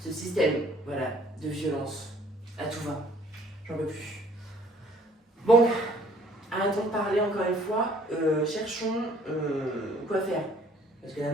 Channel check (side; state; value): both; normal; correlation 0.58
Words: système, voilà, de violence à tout va. J'en peux plus. Bon, arrêtons de parler encore une fois, cherchons quoi faire. Parce que la